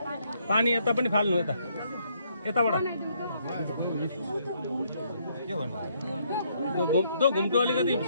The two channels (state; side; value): inverted; both; correlation -0.71